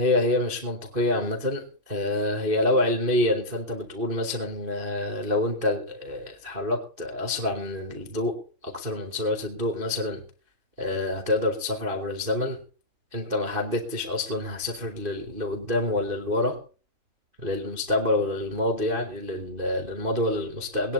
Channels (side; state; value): left; late; 2.6 ms